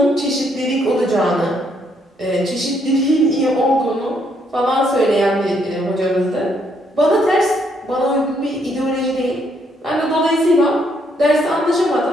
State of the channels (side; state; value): both; normal; correlation 0.72